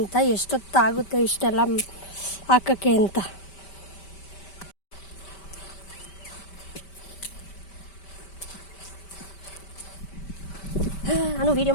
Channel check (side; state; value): right; late; 5.1 ms